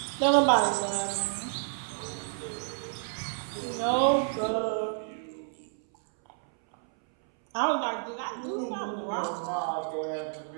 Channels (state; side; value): silent; left; 58 dB below the other